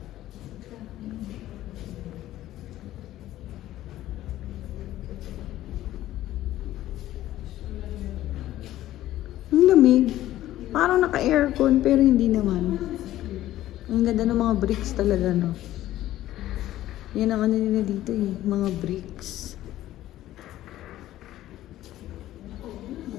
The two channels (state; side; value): quieter; right; 14.2 dB